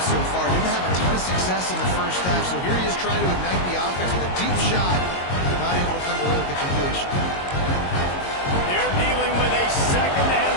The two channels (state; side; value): late; right; 22 ms